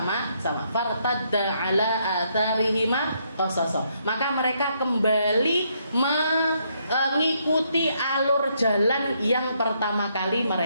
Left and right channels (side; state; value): both; inverted; correlation -0.74